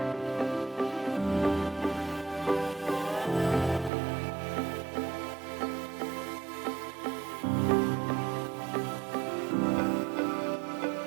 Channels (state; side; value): drops out; left; at 3.9 s